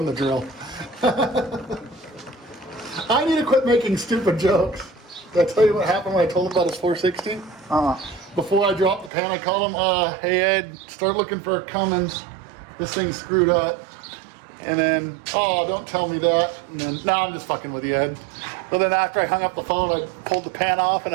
the drill. I need to quit making stupid jokes. Did I tell you what happened when I told him about his 460? Before I dropped the pan, I called him, hey Ed, start looking for a Cummins. This thing's screwed up. And then, oh, don't tell me that. And then, no, I'm just fucking with you, Ed. But then after I hung up the phone, I pulled the pan off and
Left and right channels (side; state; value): left; drops out; at 9.1 s